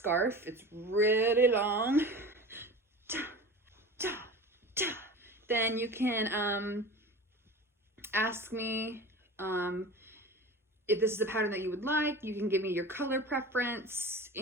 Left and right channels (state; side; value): normal; both; correlation 0.34